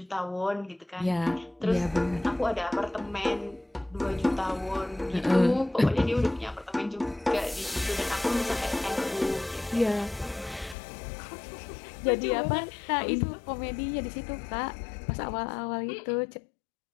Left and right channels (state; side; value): drops out; right; at 10.8 s